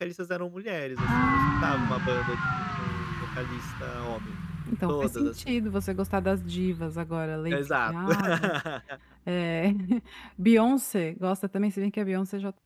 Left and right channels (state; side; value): identical; both; correlation 1.00